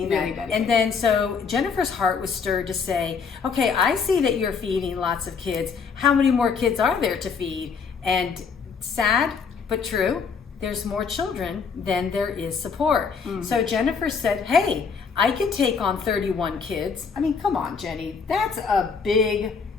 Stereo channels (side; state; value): right; quieter; 5.7 dB